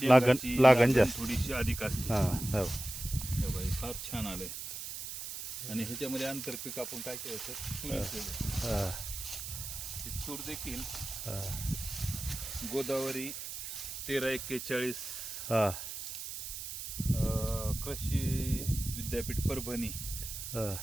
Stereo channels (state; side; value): noise; right; hiss, 7 dB below the sound